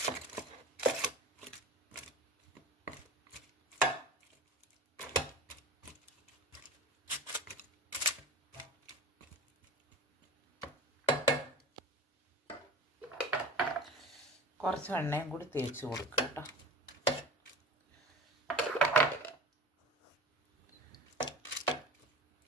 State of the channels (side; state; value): both; normal; correlation 0.36